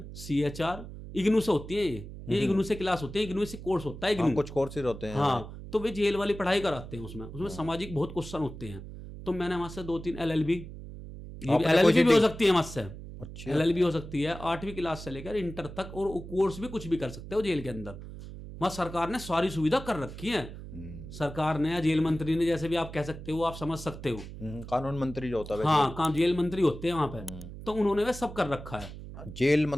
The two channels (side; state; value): right; noise; hum, 12 dB below the sound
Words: CHR इग्नू से होती है, ये इग्नू से क्लास होती है, इग्नू से कोर्स होता है, इग्नू कुछ कोर्सेज होते हैं। हाँ तो वे जेल वाली पढ़ाई कराते हैं, उसमें सामाजिक बहुत क्वेश्चन होते हैं। तो मैंने वहाँ से 2-3 LLB, ये LLB भी हो सकती है वहाँ से, LLB हो सकती है 8वीं क्लास से लेकर इंटर तक, और कोर्स भी कुछ भी कर सकते हो जेल के अंदर। वहाँ सरकार ने सारी सुविधा कर रखी है, सरकार ने, जेल मंत्री ने, जैसे भी आप कह सकते हो, आप समझ सकते हो, कानून मंत्री जो होता है, हाँ जेल मंत्री होते हैं वहाँ पे, तो उन्होंने वह सब कर रखा है। जेल